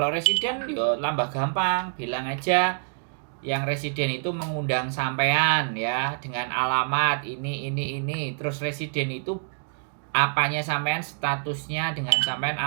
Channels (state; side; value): silent; left; digital silence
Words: residen yo tambah gampang, bilang aja yang residen itu mengundang sampean ya dengan alamat ini. Terus residen itu apanya sampean, statusnya dengan sampean